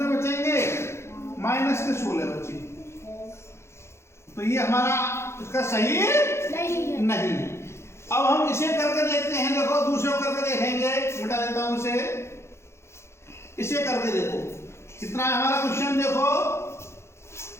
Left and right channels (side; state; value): right; late; 0.13 ms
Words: बचेंगे? माइनस के 16 बचे। तो ये हमारा इसका सही नहीं है। अब हम इसे करके देखते हैं। देखो दूसरे को करके देखेंगे। मिटा देता हूं इसे करके देखो कितना है हमारा क्वेश्चन। देखो